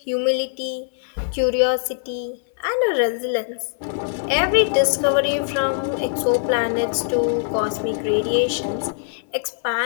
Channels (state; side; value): silent; right; 64 dB below the other